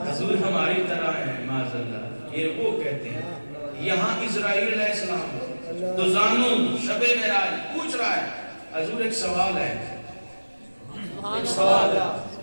حضور ہماری طرح ہیں معاذ اللہ یہ وہ کہتے ہیں یہاں اسرائیل علیہ السلام تو زانو شب معراج پوچھ رہا ہے حضور ایک سوال ہے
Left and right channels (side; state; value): both; inverted; correlation -1.00